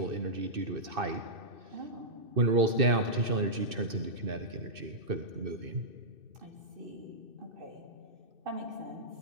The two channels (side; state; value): left; late; 2.6 ms